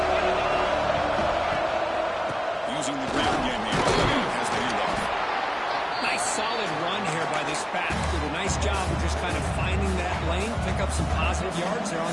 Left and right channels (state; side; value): identical; both; correlation 1.00